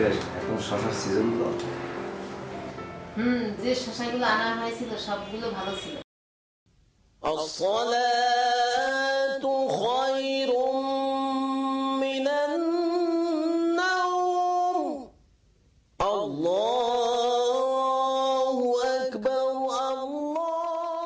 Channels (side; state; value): both; identical; correlation 1.00